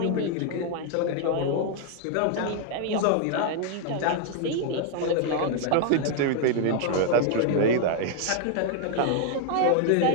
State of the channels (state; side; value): different; both; correlation 0.00